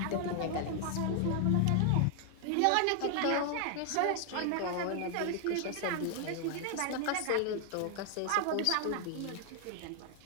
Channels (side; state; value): both; different; correlation 0.00